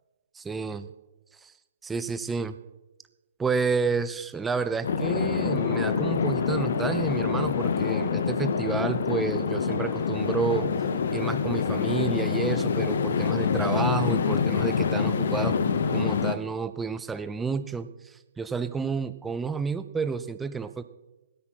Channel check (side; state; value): both; normal; correlation -0.12